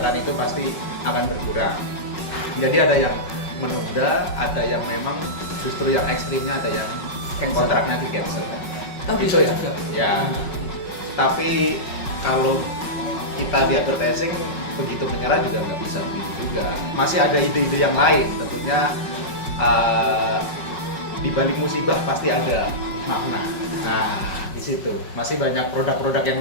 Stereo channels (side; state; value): right; late; 5.4 ms